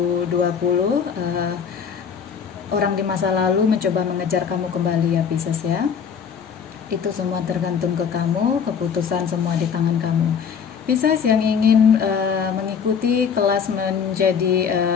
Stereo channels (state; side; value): quieter; right; 6.9 dB